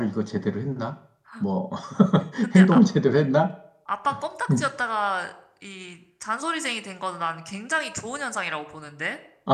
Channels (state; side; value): identical; both; correlation 1.00